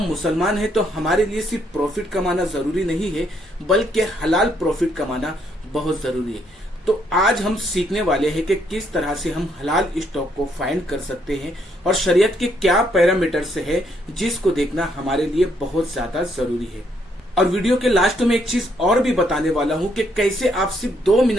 मुसलमान हैं तो हमारे लिए सिर्फ प्रॉफिट कमाना जरूरी नहीं है, बल्कि हलाल प्रॉफिट कमाना बहुत जरूरी है। तो आज हम सीखने वाले हैं कि किस तरह से हम हलाल स्टॉक को फाइंड कर सकते हैं और शरीयत के क्या पैरामीटर्स है जिसको देखना हमारे लिए बहुत ज्यादा जरूरी है। और वीडियो के लास्ट में एक चीज और भी बताने वाला हूं कि कैसे आप सिर्फ 2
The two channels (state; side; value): normal; both; correlation 0.72